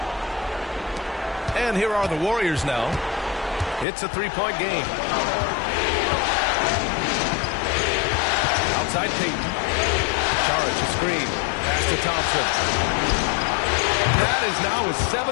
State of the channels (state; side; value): drops out; right; at 3.9 s